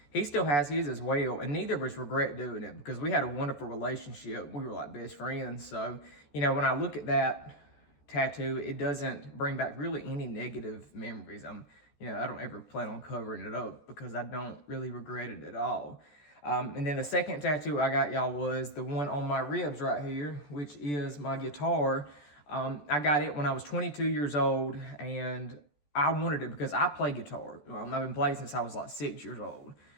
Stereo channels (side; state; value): right; late; 14 ms